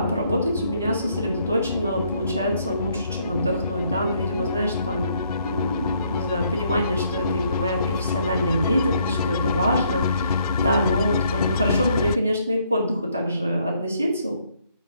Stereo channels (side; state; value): both; inverted; correlation -0.69